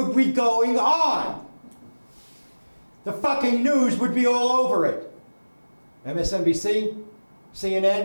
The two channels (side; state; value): both; inverted; correlation -1.00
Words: be going on? The fucking news would be all over it. MSNBC,